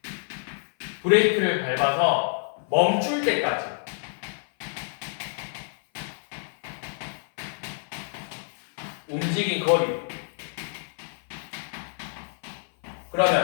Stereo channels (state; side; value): silent; right; 56 dB below the other